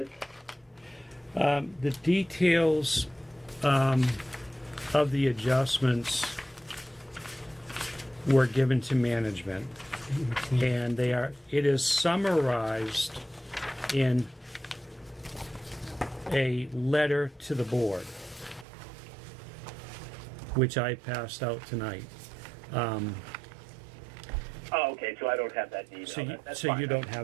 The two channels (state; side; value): drops out; left; at 18.7 s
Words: The details of the adjustments were given to management, and it is summarized in a letter to the board, which I passed out tonight. Oh, okay. So I don't have that email. That's So fine. you don't